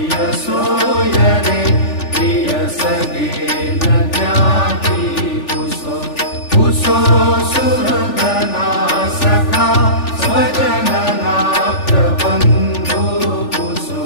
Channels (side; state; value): right; late; 3.4 ms